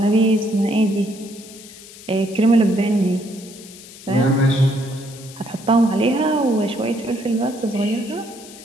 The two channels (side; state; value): left; noise; hiss, 18 dB below the sound